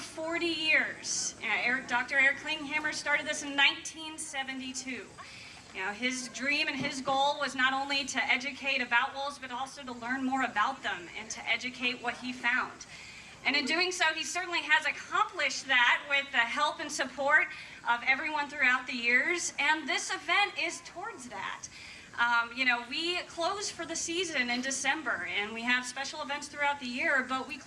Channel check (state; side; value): identical; both; correlation 1.00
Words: years. Dr. Eric Klinghammer started this in 1972. His dream and his goal was not only to educate about wolves, but also to learn more about them and to educate what he found. And in doing so, he certainly has accomplished that with the help and support of everyone throughout the years. And this event is towards that. We close for the season in December, and we have special events throughout the year, but we